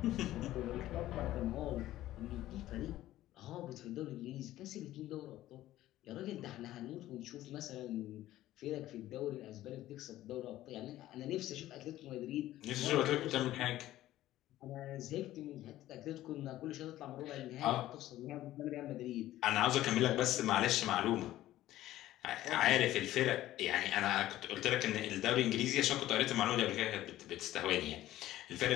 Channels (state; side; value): quieter; right; 14.6 dB